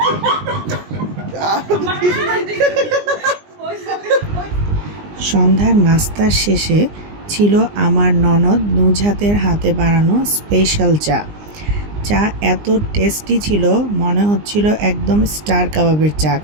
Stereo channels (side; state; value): left; late; 20 ms